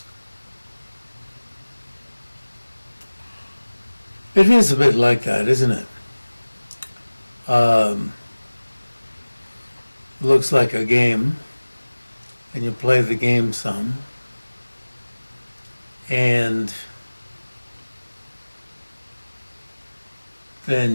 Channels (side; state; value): both; inverted; correlation -1.00